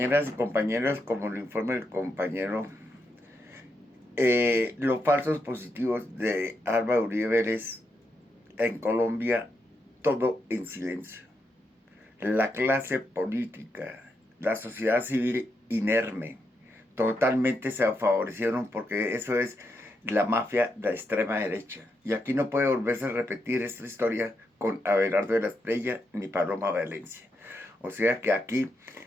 y compañeros, como lo informa el compañero, los falsos positivos de Álvaro Uribe Vélez en Colombia, todo en silencio. La clase política, la sociedad civil inerme, totalmente se favorecieron porque eso es la mafia de la extrema derecha. Y aquí no puede volverse a repetir esta historia con Abelardo de la Espriella ni Paloma Valencia. O sea que aquí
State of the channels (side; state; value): both; normal; correlation 0.82